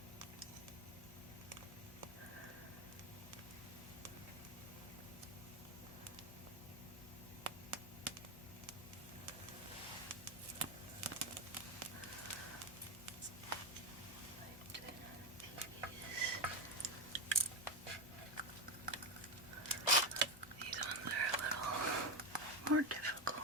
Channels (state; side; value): normal; both; correlation 0.11